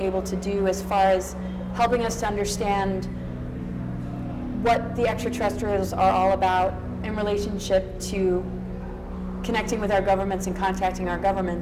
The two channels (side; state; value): both; identical; correlation 1.00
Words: to do as far as helping us to understand what the extraterrestrials are all about in relationship to connecting with our governments and contacting our